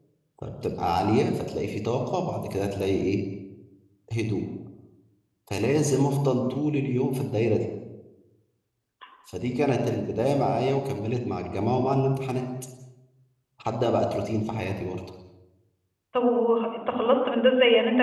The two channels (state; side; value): identical; both; correlation 1.00